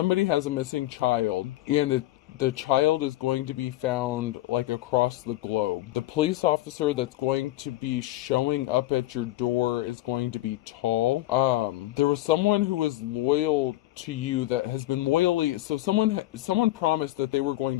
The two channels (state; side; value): quieter; right; 16.4 dB